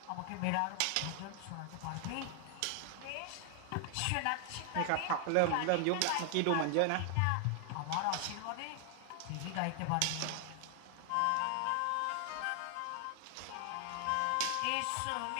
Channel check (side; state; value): both; different; correlation 0.00